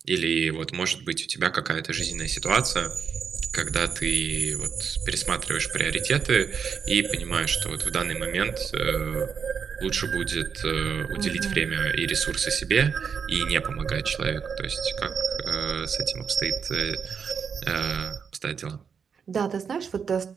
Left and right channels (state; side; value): quieter; left; 6.5 dB